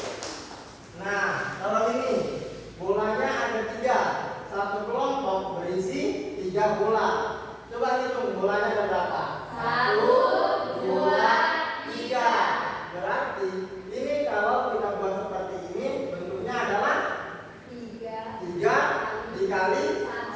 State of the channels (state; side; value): identical; both; correlation 1.00